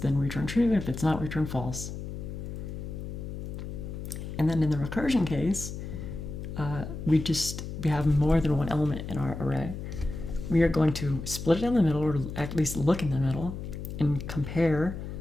return true. If it's not, return false. And then in the recursion case, we have more than one element in our array. We are going to split it down the middle, or at least look in the middle, and compare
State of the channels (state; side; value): noise; left; hum, 7 dB below the sound